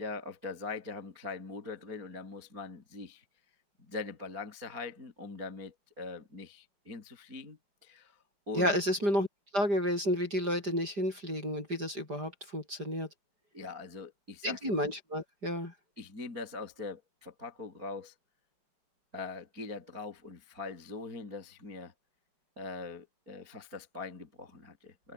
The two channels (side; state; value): left; late; 5.0 ms